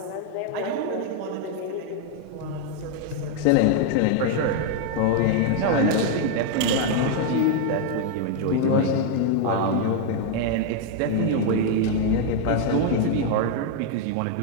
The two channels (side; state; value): both; different; correlation 0.00